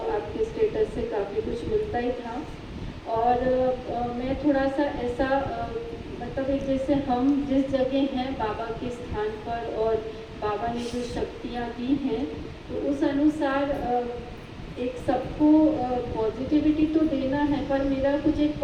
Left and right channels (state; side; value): identical; both; correlation 1.00